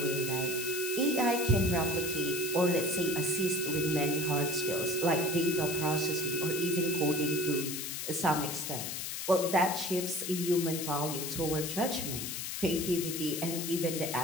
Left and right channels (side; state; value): left; noise; hiss, 4 dB below the sound